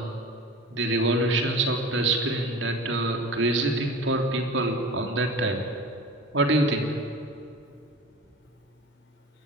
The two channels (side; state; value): both; normal; correlation 0.36